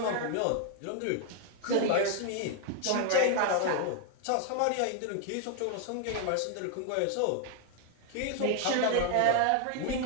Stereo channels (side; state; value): both; different; correlation 0.00